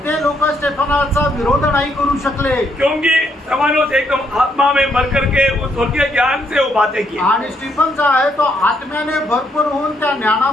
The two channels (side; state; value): both; normal; correlation 0.73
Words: ते लोक स्टेफनाचा विरोध नाही करू शकले क्योंकि स्तेफानोस एकदम आत्मा में भर करके उस स्वर्गीय ज्ञान से वो बातें की. आणि स्टीफन जो आहे तो आत्म्याने भरपूर होऊन त्या